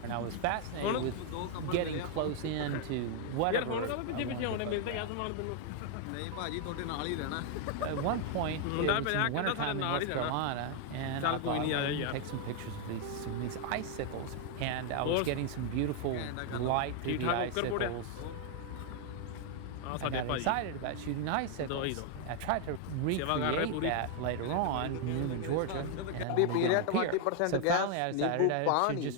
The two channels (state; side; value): different; both; correlation 0.00